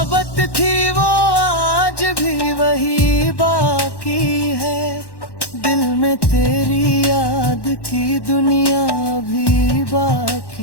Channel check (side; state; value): right; late; 1.1 ms